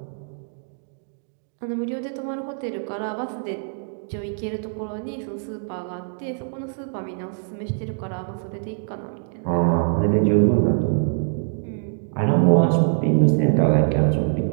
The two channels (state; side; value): silent; left; digital silence